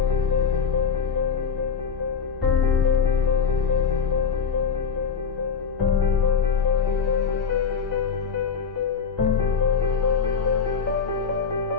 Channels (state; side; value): quieter; right; 6.0 dB